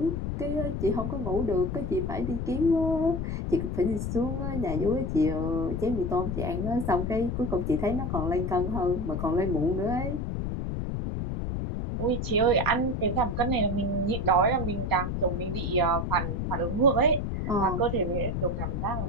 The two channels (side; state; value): left; noise; rumble, 2 dB below the sound